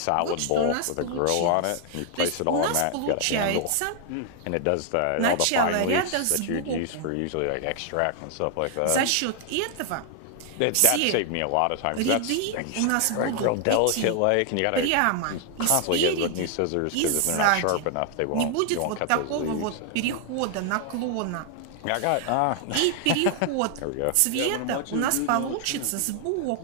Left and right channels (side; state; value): both; different; correlation 0.00